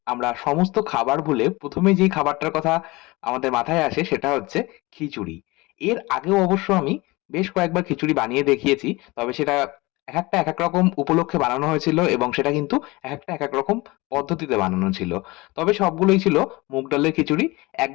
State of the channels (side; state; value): right; quieter; 22.6 dB